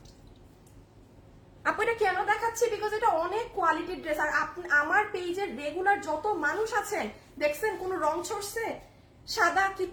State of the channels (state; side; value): identical; both; correlation 1.00